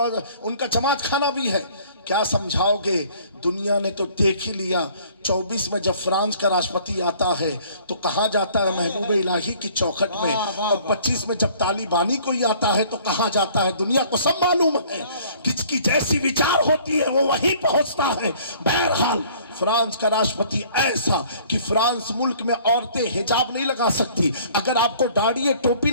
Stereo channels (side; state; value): both; inverted; correlation -0.54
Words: کا جماعت خانہ بھی ہے، کیا سمجھاؤ گے؟ دنیا نے تو دیکھ ہی لیا۔ 24 میں جب فرانس کا راشٹرپتی آتا ہے تو کہاں جاتا ہے؟ محبوب الہی کی چوکھٹ میں، اور 25 میں جب طالبانی کوئی آتا ہے تو کہاں جاتا ہے؟ دنیا کو سب معلوم ہے، کس کی جیسی وچار ہوتی ہے وہ وہیں پہنچتا ہے۔ بہرحال فرانس کا راشٹرپتی ایسا کہ فرانس ملک میں عورتیں حجاب نہیں لگا سکتی، اگر آپ کو داڑھی ہے ٹوپی